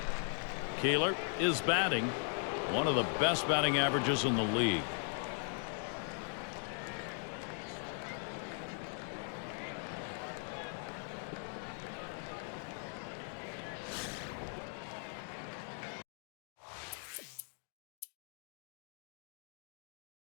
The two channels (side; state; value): right; silent; 52 dB below the other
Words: Keeler is batting. One of the best batting averages in the league.